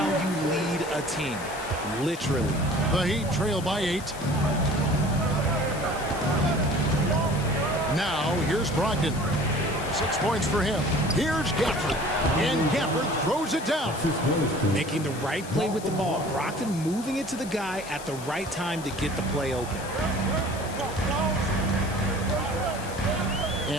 you lead a team. Literally. The Heat trail by 8. Now, here's Brogdon. 6 points for him. Here's Gafford. And Gafford throws it down. Making the right play with the ball. Brogdon moving it to the guy at the right time to get the play open.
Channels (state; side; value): noise; left; hiss, 15 dB below the sound